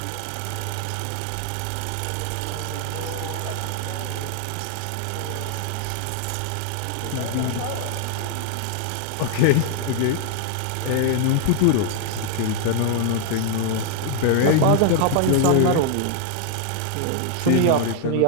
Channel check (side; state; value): both; different; correlation 0.00